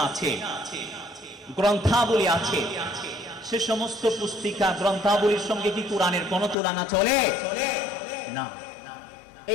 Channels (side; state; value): right; drops out; at 6.6 s